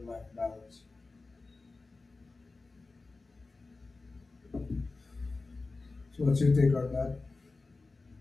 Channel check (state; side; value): quieter; right; 3.7 dB